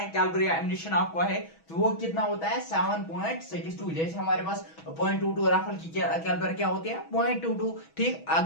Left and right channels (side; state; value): right; late; 6.2 ms